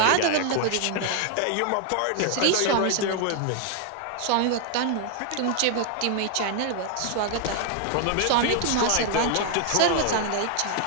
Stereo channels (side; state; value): both; different; correlation 0.00